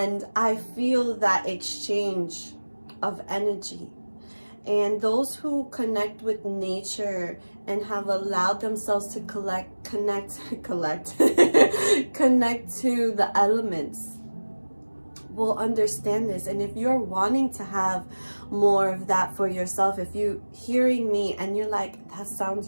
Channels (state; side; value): inverted; both; correlation -1.00